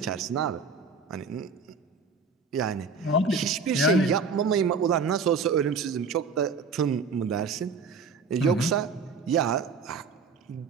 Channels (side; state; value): left; quieter; 4.7 dB